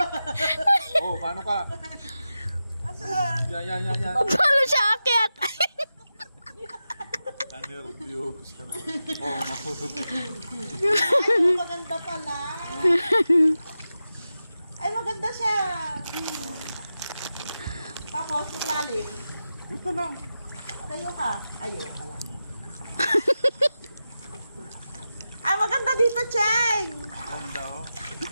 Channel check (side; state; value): both; inverted; correlation -0.92